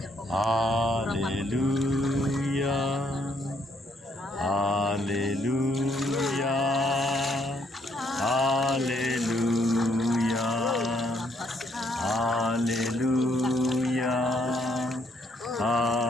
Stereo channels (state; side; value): normal; both; correlation 0.70